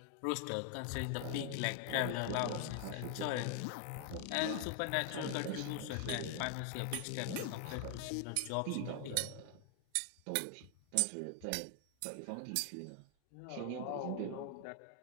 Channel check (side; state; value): both; different; correlation 0.00